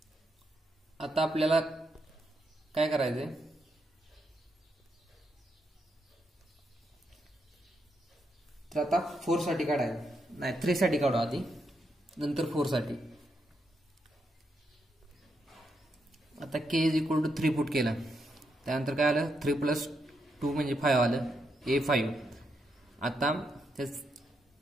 आता आपल्याला काय करायचंय, तर आता 4 साठी काढायचं, नाही 3 साठी काढू आधी, नंतर 4 साठी. आता के इज इक्वल टू 3 पुट केलं, त्यानंतर काय आलं, 3 प्लस 2 म्हणजे 5 आलं, a5. आता त्याच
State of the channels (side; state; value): both; normal; correlation 0.81